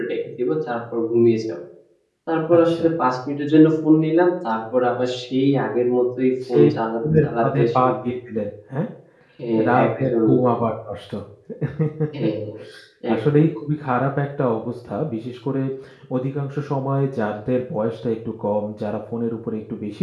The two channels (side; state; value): both; identical; correlation 1.00